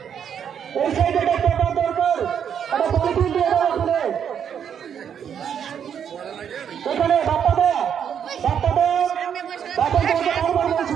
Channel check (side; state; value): left; quieter; 8.3 dB